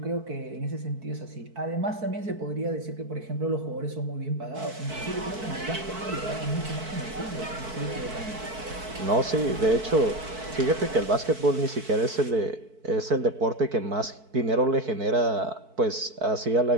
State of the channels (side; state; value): left; late; 4.6 ms